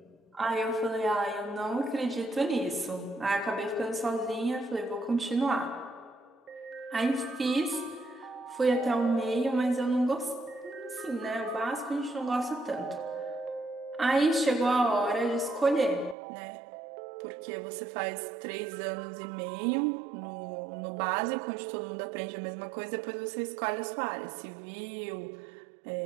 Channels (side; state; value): left; drops out; at 16.2 s